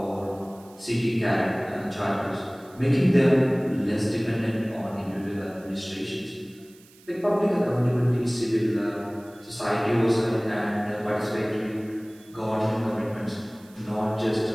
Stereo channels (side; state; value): right; noise; hiss, 26 dB below the sound